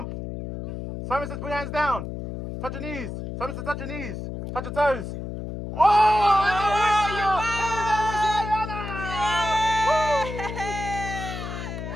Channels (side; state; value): left; noise; hum, 7 dB below the sound